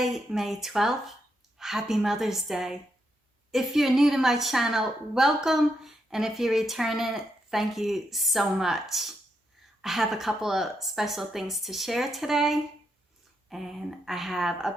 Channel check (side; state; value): both; normal; correlation 0.81